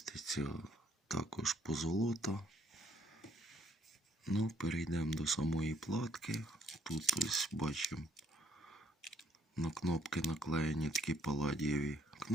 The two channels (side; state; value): both; normal; correlation 0.67